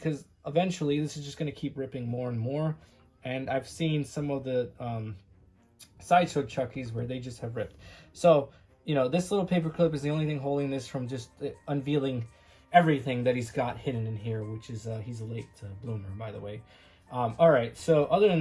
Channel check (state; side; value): identical; both; correlation 1.00